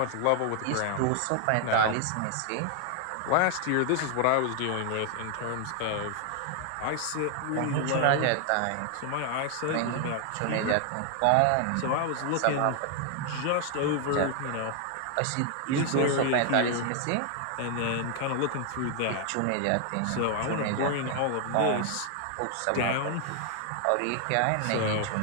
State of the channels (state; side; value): different; both; correlation 0.00